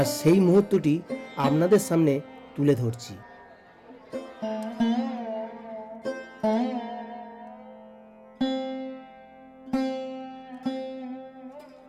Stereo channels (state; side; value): identical; both; correlation 1.00